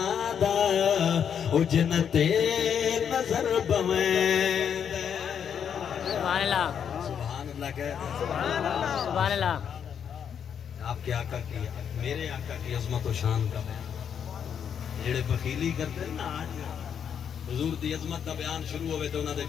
دا او جنتے نظر بویں دے۔ سبحان اللہ۔ سبحان اللہ کہہ سبحان اللہ۔ آپ کے آقا کی، میرے آقا کی عظمت و شان کا بیان، جڑے بخیلی کرتے ہیں نا آج حضور دی عظمت دا بیان شروع ہوئے تو انہاں دے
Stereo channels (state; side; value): quieter; right; 8.0 dB